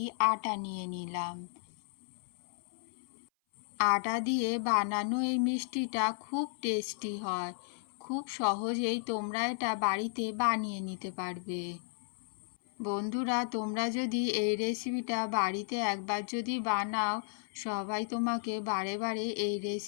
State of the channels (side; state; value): right; silent; 55 dB below the other